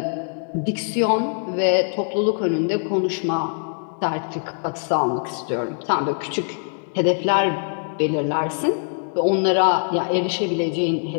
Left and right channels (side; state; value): right; silent; 62 dB below the other